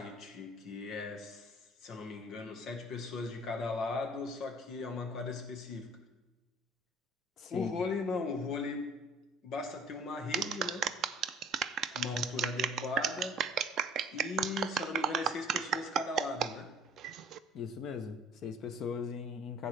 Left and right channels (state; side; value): normal; both; correlation 0.53